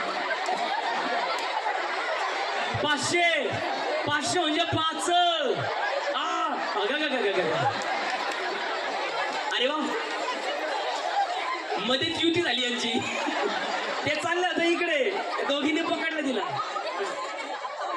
पाचशे पाचशे म्हणजे पाच. अरे वा मध्येच युती झाली यांची. ते चाललं होतं इकडे दोघींनी पकडलं तिला.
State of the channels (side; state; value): both; identical; correlation 1.00